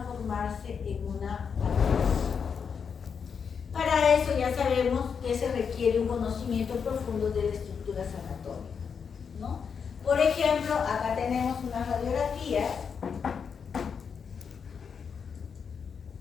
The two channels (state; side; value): quieter; right; 6.4 dB